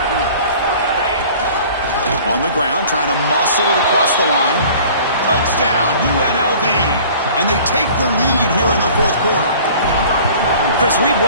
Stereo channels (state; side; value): inverted; both; correlation -0.47